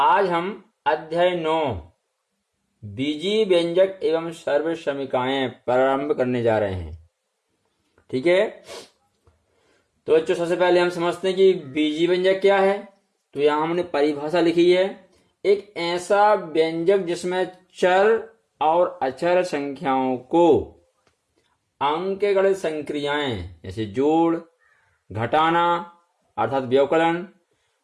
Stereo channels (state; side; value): identical; both; correlation 1.00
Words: हम अध्याय 9 बीजी व्यंजक एवं सर्वसमीकाएं प्रारंभ करने जा रहे हैं। ठीक है, तो बच्चों सबसे पहले हम समझते हैं कि बीजी व्यंजक क्या है। तो यहां हमने परिभाषा लिखी है, एक ऐसा व्यंजक जिसमें चर और अचर संख्याओं को अंकगणित संक्रियाएं जैसे जोड़, घटाना अर्थात व्यवकलन,